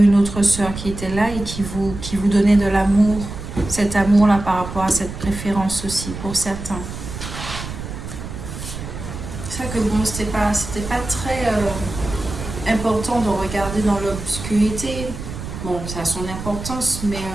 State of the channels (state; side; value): noise; right; rumble, 9 dB below the sound